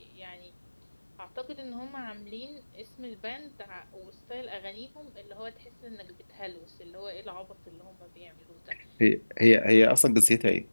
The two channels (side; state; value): both; inverted; correlation -1.00